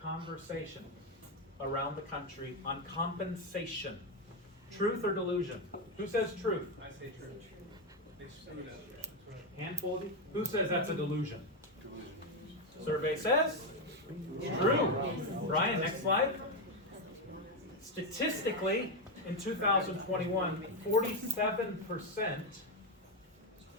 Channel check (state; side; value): normal; both; correlation 0.07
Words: around the country on compensation. Truth or delusion? Who says truth? I say true. Handful of you? Who says that's a delusion? Survey says true. Brian, next slide. Statistically, in 2021, 47%